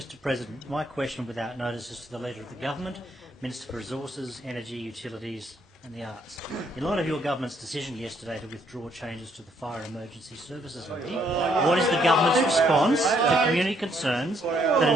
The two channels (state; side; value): normal; both; correlation 0.70